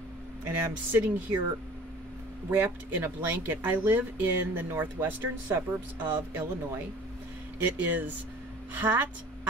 I'm sitting here wrapped in a blanket. I live in the northwestern suburbs of Illinois. It is hot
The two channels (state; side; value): normal; both; correlation 0.46